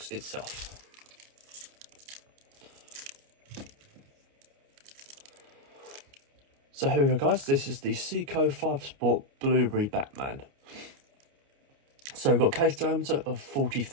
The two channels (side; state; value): left; late; 29 ms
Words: itself. So here we go guys, this is the Seiko 5 Sport Blueberry Batman. So we've got a case diameter of